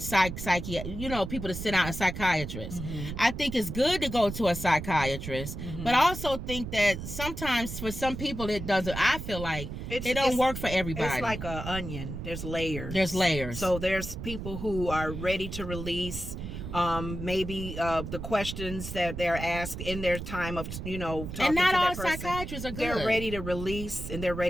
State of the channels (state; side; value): noise; right; rumble, 7 dB below the sound